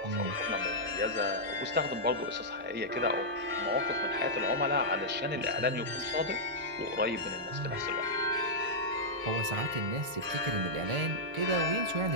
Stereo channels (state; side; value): late; left; 1.4 ms